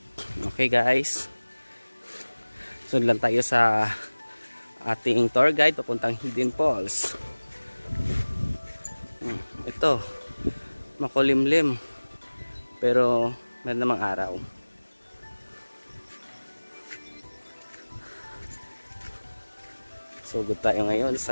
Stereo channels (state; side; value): inverted; both; correlation -1.00